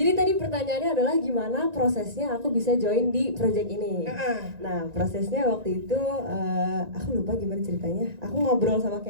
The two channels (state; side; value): late; left; 1.9 ms